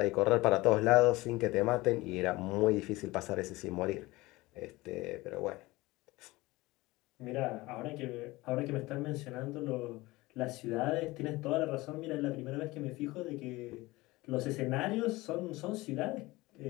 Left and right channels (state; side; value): quieter; right; 20.5 dB